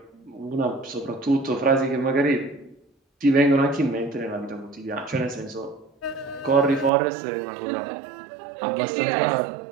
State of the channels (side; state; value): left; drops out; at 6.9 s